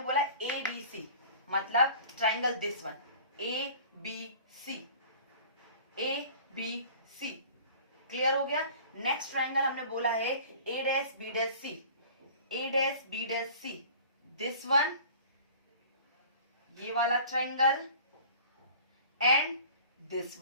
बोला ए बी सी मतलब triangle this one A B C, A B C. Clear हो गया। नेक्स्ट ट्राइंगल हमने बोला है A dash B dash C, A dash B dash C, this one, ये वाला ट्राइंगल, एंड दिस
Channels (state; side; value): inverted; both; correlation -0.45